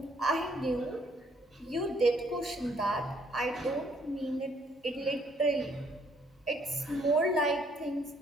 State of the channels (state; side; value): normal; both; correlation 0.66